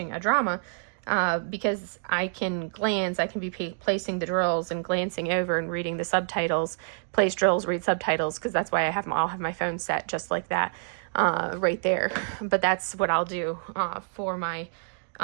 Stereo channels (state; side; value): silent; left; digital silence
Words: a drama because I can glance. I can be placing the drills and glancing over and reading the subtitles, place drills, read subtitles, because that's why I'll have my phone set just like that right there. But that's what I'll do for my